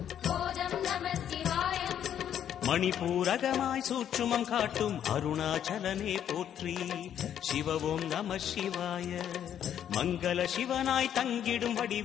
போதம் நம சிவாயம் மணிபூரகமாய் சூட்சுமம் காட்டும் அருணாச்சலனே போற்றி சிவவும் நம சிவாய மங்கள சிவனாய் தங்கிடும்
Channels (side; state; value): right; quieter; 9.8 dB